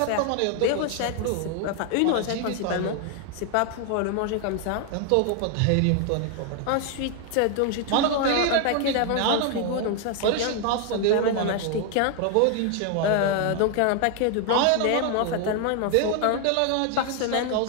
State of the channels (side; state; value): both; different; correlation 0.00